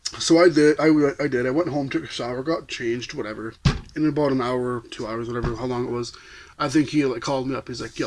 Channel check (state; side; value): identical; both; correlation 1.00